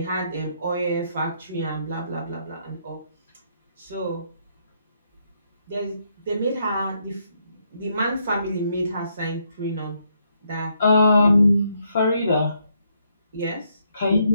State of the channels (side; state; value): both; inverted; correlation -0.74